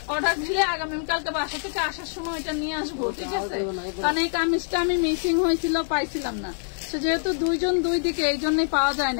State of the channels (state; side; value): silent; right; digital silence